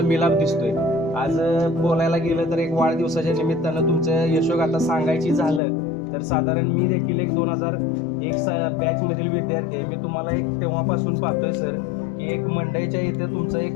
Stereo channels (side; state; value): right; drops out; at 5.6 s